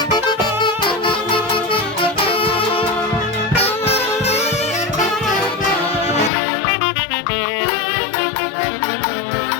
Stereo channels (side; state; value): right; drops out; at 6.3 s